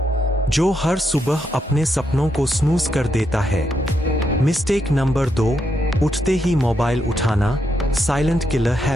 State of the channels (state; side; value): normal; both; correlation 0.81